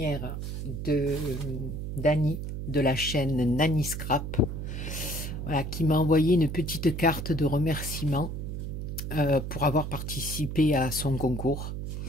de Dani de la chaîne Nani Scrap, voilà, qui m'a envoyé une petite carte de remerciement pour avoir participé à son concours.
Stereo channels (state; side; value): noise; right; hum, 5 dB below the sound